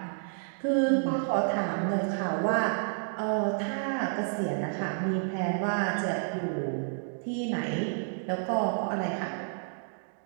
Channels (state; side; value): silent; left; digital silence